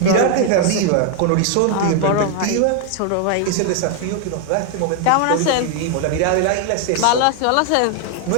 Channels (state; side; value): different; both; correlation 0.00